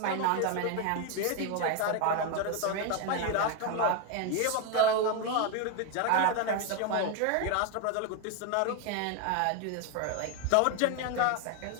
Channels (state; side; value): different; both; correlation 0.01